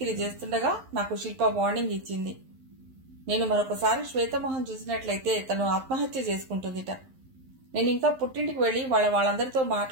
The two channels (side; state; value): left; late; 11 ms